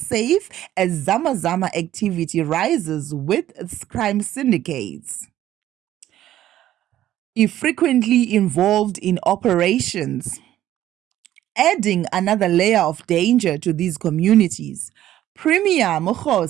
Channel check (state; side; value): quieter; left; 12.9 dB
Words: as zamazama activity rises with crime syndicates frequently involved in operations, adding another layer of danger to these communities. Premier